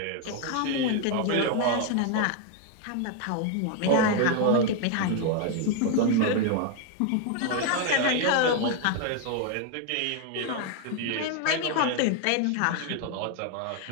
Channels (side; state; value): both; different; correlation 0.01